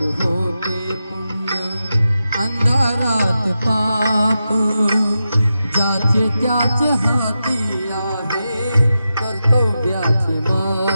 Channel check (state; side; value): inverted; both; correlation -0.90